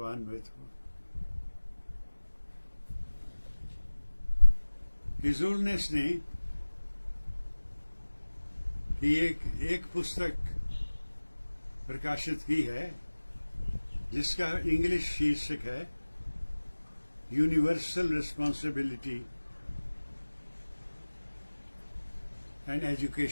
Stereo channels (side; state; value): both; inverted; correlation -1.00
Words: हो। हिजुलनेस ने कि एक पुस्तक प्रकाशित की है जिसका इंग्लिश शीर्षक है यूनिवर्सल रिस्पॉन्सिबिलिटी एंड